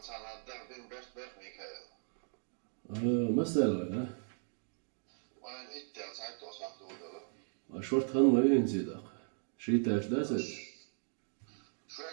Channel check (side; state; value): left; silent; 53 dB below the other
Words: مثلا شورت خان ما ينزل شيء تاش داسس